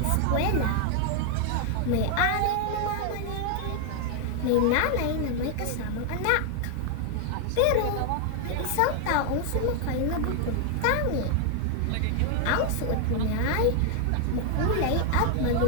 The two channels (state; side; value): different; both; correlation 0.00